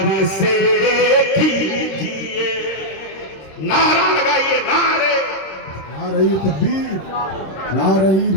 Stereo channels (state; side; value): late; right; 26 ms